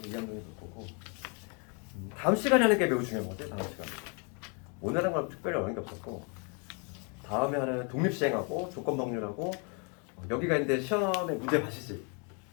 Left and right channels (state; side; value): quieter; right; 35.9 dB